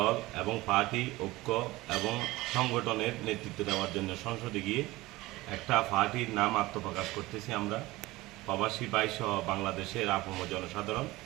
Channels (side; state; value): left; quieter; 19.5 dB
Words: এবং পার্টি ঐক্য এবং সংগঠনের নেতৃত্ব দেওয়ার জন্য সংসদে গিয়ে একটা পার্টির নাম আত্মপ্রকাশ করতেছি আমরা, প্রবাসী ভাই সহ বাংলাদেশের আপম জনসাধারণ।